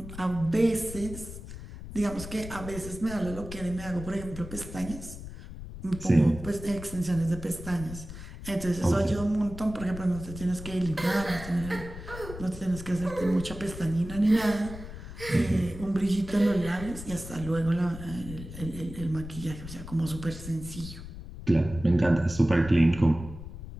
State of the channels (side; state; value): left; noise; rumble, 11 dB below the sound